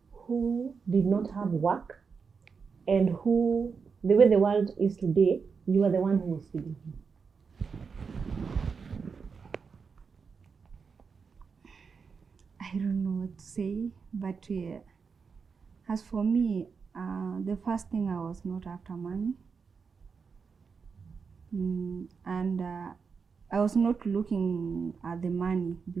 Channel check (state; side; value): quieter; left; 5.5 dB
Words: who did not have work and who, the way the world is today, you are the one who was feeding him? I don't know what to say, but as for me, the first thing, I was not after money. And I was not looking at the money